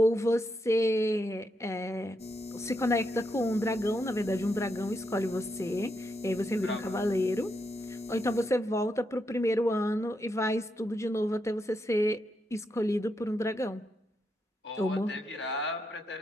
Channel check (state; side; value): normal; both; correlation 0.82